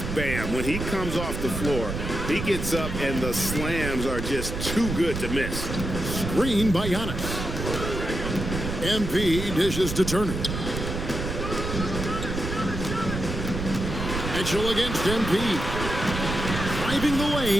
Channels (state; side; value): noise; right; rumble, 5 dB below the sound